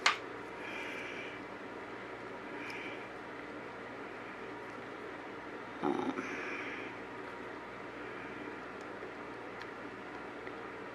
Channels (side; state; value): both; identical; correlation 1.00